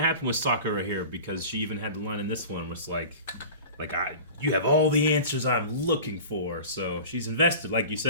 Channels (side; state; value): both; inverted; correlation -0.38